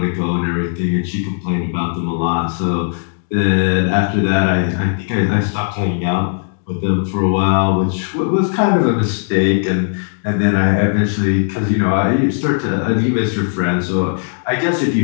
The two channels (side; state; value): right; silent; 68 dB below the other